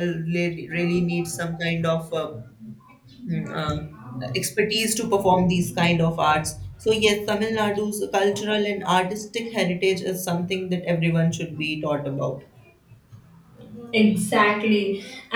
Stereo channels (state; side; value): identical; both; correlation 1.00